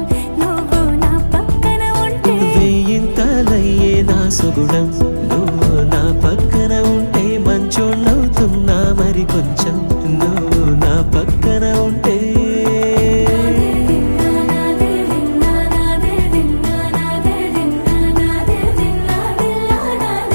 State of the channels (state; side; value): inverted; both; correlation -1.00